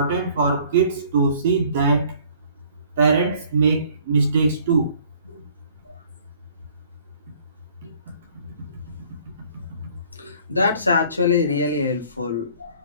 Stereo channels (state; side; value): inverted; both; correlation -0.56